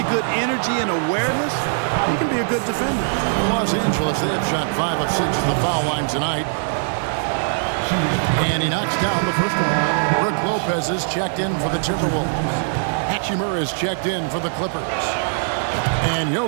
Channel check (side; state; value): left; silent; digital silence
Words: good energy and awareness, he can be a good defender. For Los Angeles, they have shot 5 of 6 at the foul line tonight. And he knocks down the first one. Brook Lopez is checked in for the Timberwolves. Hachimura is checked in for the Clippers. And